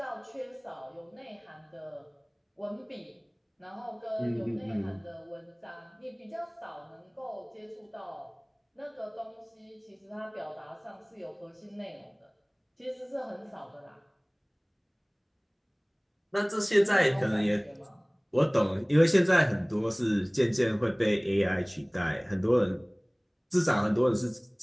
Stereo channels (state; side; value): identical; both; correlation 1.00